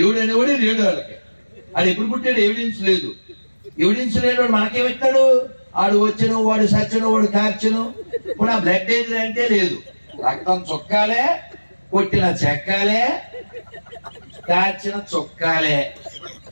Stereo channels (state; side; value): inverted; both; correlation -1.00